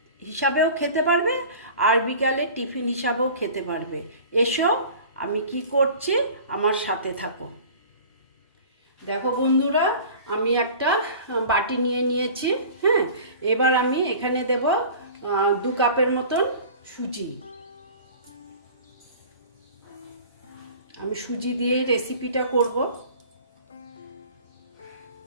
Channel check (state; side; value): inverted; both; correlation -0.42